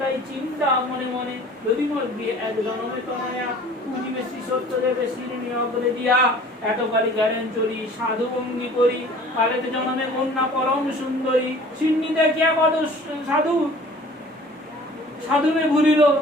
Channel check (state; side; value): normal; both; correlation 0.48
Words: চিন্তা মনে মনে, যদি মোর বিয়ে এক জনমে তনয়া, পুজিবে শ্রী সত্য দেবে শিরিনি অগ্রে দিয়া। এতকালী গেলেন চলি সাধু ভঙ্গি করি, কালেতে জনমে কন্যা পরম সুন্দরী। সিন্নি দেখিয়া কত সাধু সাধুমে ভুলিল,